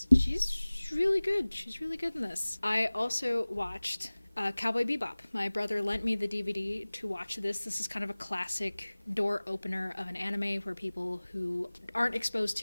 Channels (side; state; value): both; inverted; correlation -1.00